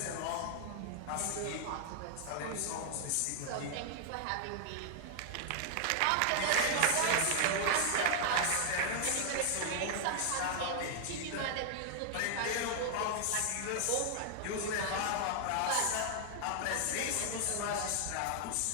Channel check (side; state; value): both; different; correlation 0.00